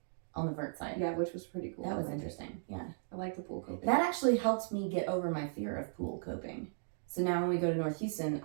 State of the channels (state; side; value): silent; left; digital silence